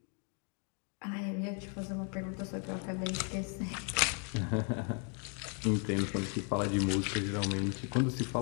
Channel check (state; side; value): quieter; right; 39.1 dB